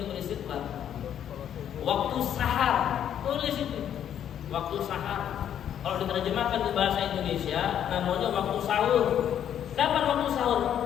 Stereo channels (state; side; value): quieter; right; 9.8 dB